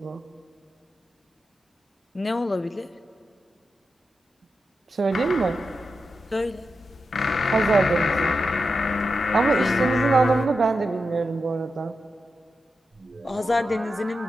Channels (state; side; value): normal; both; correlation 0.88